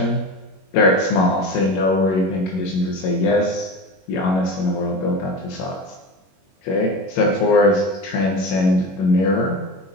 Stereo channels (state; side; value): late; right; 21 ms